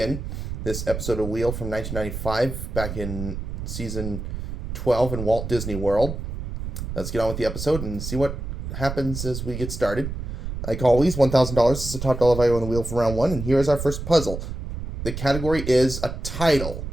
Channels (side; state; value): right; noise; rumble, 6 dB below the sound